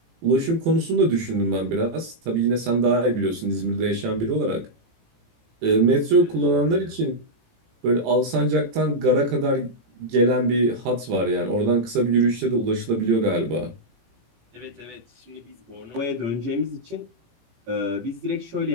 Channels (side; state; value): left; late; 18 ms